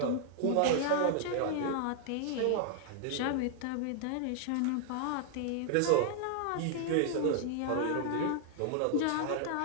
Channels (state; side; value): different; both; correlation 0.00